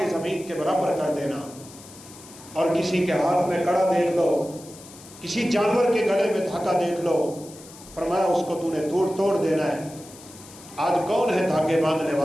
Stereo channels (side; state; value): left; noise; hiss, 19 dB below the sound